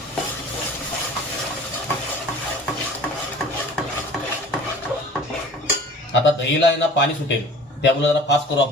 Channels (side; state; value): both; normal; correlation 0.44